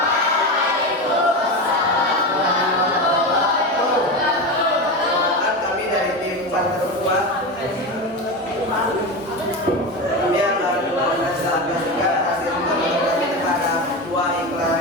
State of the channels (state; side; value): normal; both; correlation 0.20